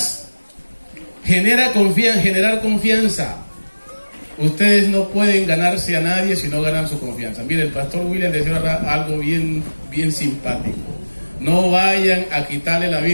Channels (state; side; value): inverted; both; correlation -1.00